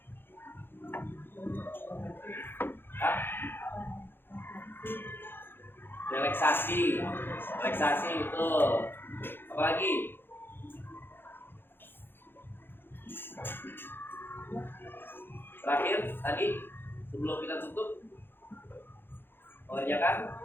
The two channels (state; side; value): late; right; 0.10 ms